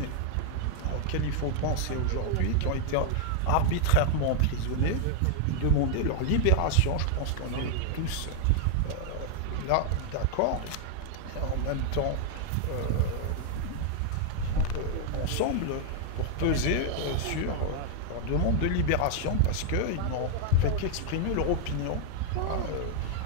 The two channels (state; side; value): different; both; correlation 0.00